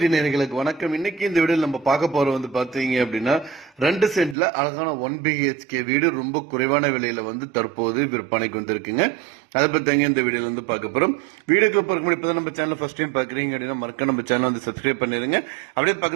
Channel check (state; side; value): drops out; left; at 4.4 s